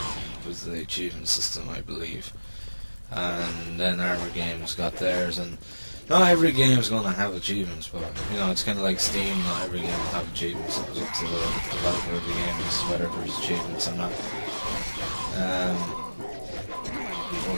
with the achievement system, I believe, and then Armour Games got theirs. And not every game is going to have achievements, but it's kind of like Steam. Not every game will have achievements. It was up to the developer of the game as to whether there's achievements or not. Oh,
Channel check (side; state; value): both; inverted; correlation -1.00